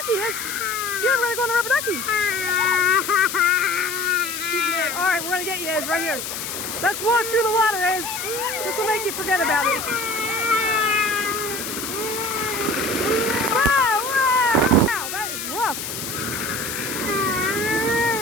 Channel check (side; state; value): left; noise; hiss, 6 dB below the sound